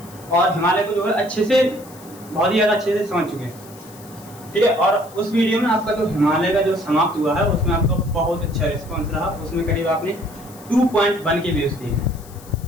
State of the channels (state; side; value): noise; left; hiss, 21 dB below the sound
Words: और हिमालय को जो है अच्छे से बहुत ही ज़्यादा अच्छे से समझ चुके हैं। ठीक है। और उस वीडियो में आपका जो हिमालय का जो समाप्त हुआ है उसमें आपका बहुत अच्छा रिस्पॉन्स रहा। उसमें करीब आपने 2.1 के व्यूज दिए हैं।